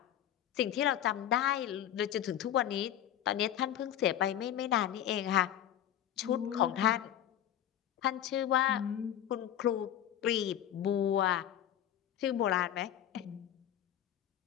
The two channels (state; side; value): quieter; right; 11.0 dB